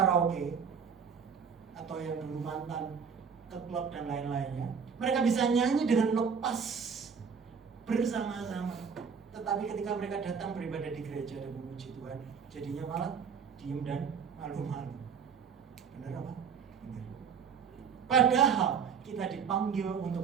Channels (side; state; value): left; quieter; 6.4 dB